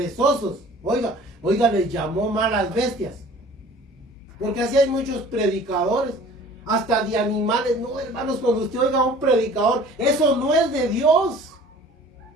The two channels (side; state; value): both; normal; correlation 0.48